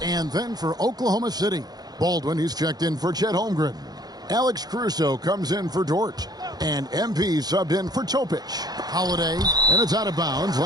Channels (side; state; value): left; late; 0.19 ms